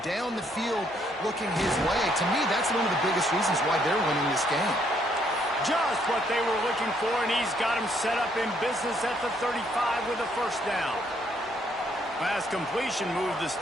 down the field looking his way. To me, that's one of the biggest reasons why they're winning this game. Just what they were looking for, and he's got him set up in business at the 35 with a first down. Last completion moved the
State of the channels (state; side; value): normal; both; correlation 0.70